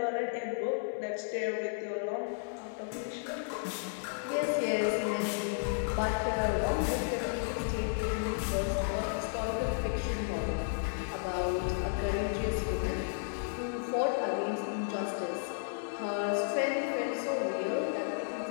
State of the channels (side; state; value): right; silent; 56 dB below the other